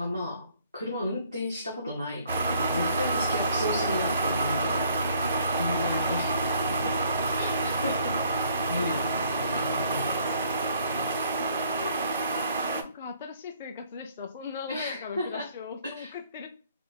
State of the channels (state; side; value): inverted; both; correlation -0.63